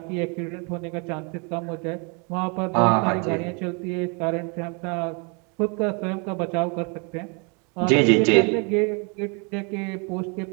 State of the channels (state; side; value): quieter; left; 34.1 dB